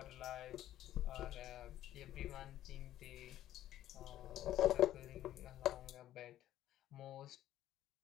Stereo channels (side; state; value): right; quieter; 12.9 dB